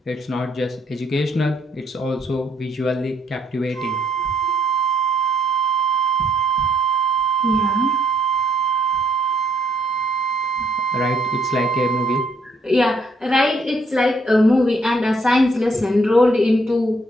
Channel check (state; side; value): normal; both; correlation 0.70